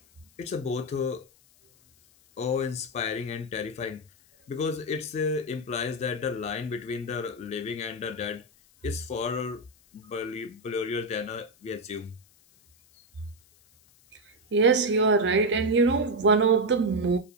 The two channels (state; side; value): noise; left; hiss, 30 dB below the sound